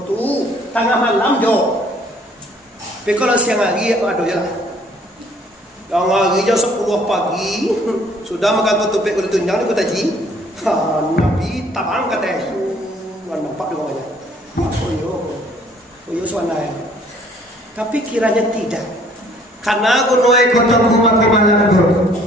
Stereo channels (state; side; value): normal; both; correlation 0.59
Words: tu tengah malam jo. Tapi kalau siang hari aduh ya. Yang hari jam 10 pagi sudah makan tutupik kulit tunjang di kota Ji. Nabi tabang kata nampak dua aja. Koyo suanaya. Tapi kiranya tidak. Karena gunoi kota kumakumalan